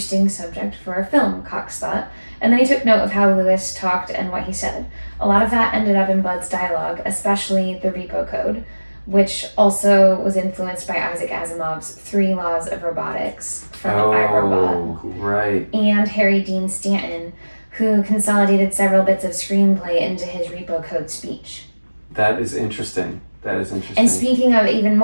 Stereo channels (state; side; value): inverted; both; correlation -1.00